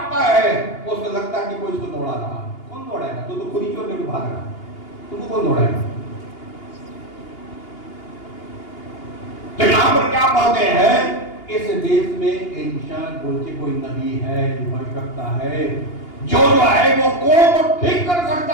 है, उसको लगता है कि कोई उसको दौड़ा रहा। कौन दौड़ाएगा? तो खुद ही चोर लेकर भाग रहा, तुमको कौन दौड़ाएगा? तो यहां पर क्या बातें हैं? इस देश में एलिशा बोल के कोई नबी है, भविष्यवक्ता है, जो है वो कौन को ठीक कर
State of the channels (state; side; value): late; right; 2.8 ms